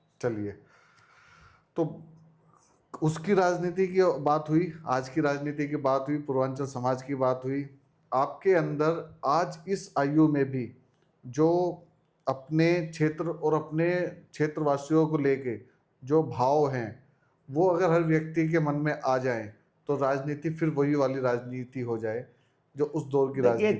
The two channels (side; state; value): both; identical; correlation 1.00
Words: चलिए, तो उसकी राजनीति की बात हुई, आज की राजनीति की बात हुई, पूर्वांचल समाज की बात हुई। आपके अंदर आज इस आयु में भी जो अपने क्षेत्र और अपने क्षेत्रवासियों को लेके जो भाव हैं, वो अगर हर व्यक्ति के मन में आ जाएं तो राजनीति फिर वही वाली राजनीति हो जाए जो उस दौर की देखिए